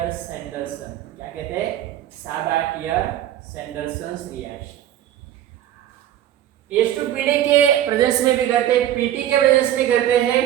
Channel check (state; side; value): quieter; left; 11.9 dB